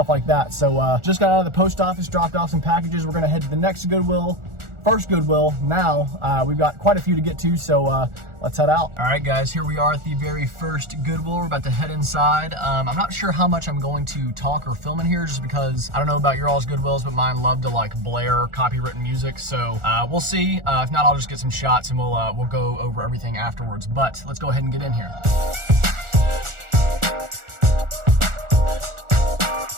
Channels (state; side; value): late; left; 1.4 ms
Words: like that. So just got out of the post office, dropped off some packages. We're gonna head to the next Goodwill. First Goodwill. Now we've got quite a few to get to, so let's head out. All right guys, here we are at the very first Goodwill. We're about to head inside. I'm not sure how much I'm going to talk or film in here, just because I don't know about your all's Goodwills, but mine love to like blare copywritten music. So we'll see. If not, I'll just get some shots and we'll go over everything afterwards. But let's go ahead and get in here.